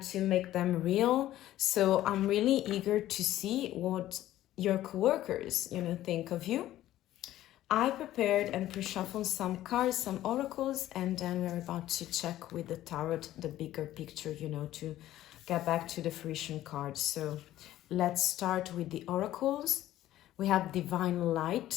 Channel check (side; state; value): right; quieter; 13.9 dB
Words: to make them real. So I'm really eager to see what your coworkers, you know, think of you. I prepared and pre-shuffled some cards, some oracles, and then we're about to check with the tarot the bigger picture, you know, to get back to the fruition cards. So let's start with the oracles. We have divine